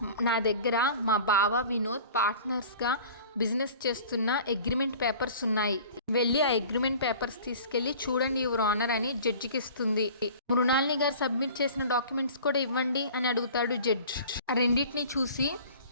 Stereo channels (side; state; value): both; inverted; correlation -0.43